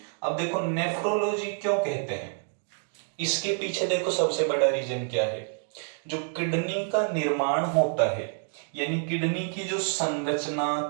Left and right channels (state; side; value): silent; left; 59 dB below the other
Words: अब देखो, नेफ्रोलॉजी क्यों कहते हैं? इसके पीछे देखो, सबसे बड़ा रीजन क्या है? जो किडनी का निर्माण होता है, यानी किडनी की जो